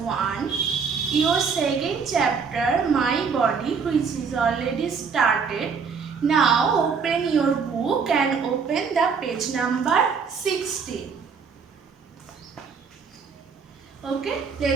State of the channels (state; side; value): quieter; left; 5.7 dB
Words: Your second chapter, My Body, which is already started. Now open your book and open the page number 60. Okay,